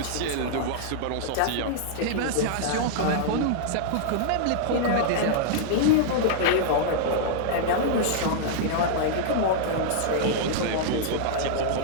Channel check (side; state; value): both; different; correlation -0.01